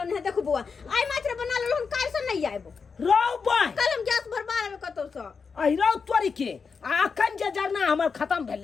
है देखो बुआ आइ मात्र बना लेलो हम काल से नहीं आइबो रो बाय कल हम गैस भरबा लेबे कतो से आई रो तोरी के अखन जे जरना हमर खत्म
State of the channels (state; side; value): quieter; right; 5.4 dB